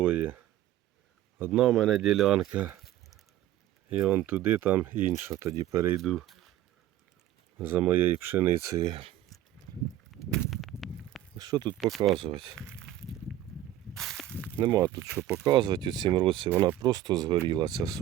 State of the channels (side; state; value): left; quieter; 13.0 dB